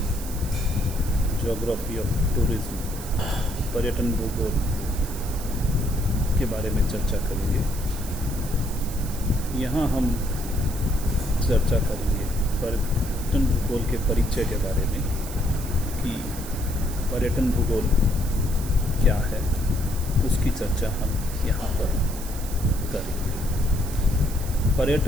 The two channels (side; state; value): right; noise; hiss, 12 dB below the sound